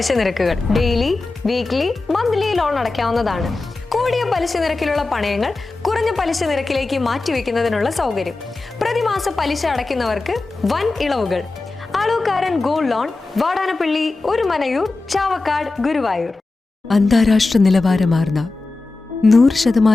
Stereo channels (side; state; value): right; quieter; 3.4 dB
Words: നിരക്കുകൾ ഡെയിലി, വീക്ക്ലി, മന്ത്ലി ലോൺ അടയ്ക്കാവുന്നതാണ്. കൂടിയ പലിശ നിരക്കിലുള്ള പണയങ്ങൾ കുറഞ്ഞ പലിശ നിരക്കിലേക്ക് മാറ്റിവെക്കുന്നതിനുള്ള സൗകര്യം. പ്രതിമാസ പലിശ അടയ്ക്കുന്നവർക്ക് വൻ ഇളവുകൾ. Alukkaran gold loan, Vadanappally, Orumanayur, Chavakkad, Guruvayur. അന്താരാഷ്ട്ര നിലവാരമാർന്ന